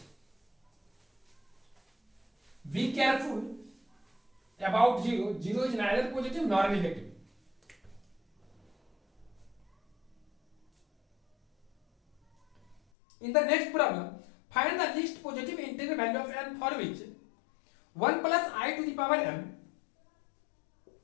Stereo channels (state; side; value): drops out; right; at 12.8 s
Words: Be careful about 0. 0 is neither positive nor negative. In the next problem, find the least positive integral value of n for which 1 plus I to the power m.